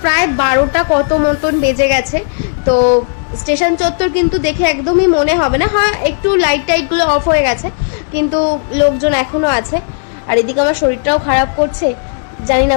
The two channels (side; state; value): right; silent; digital silence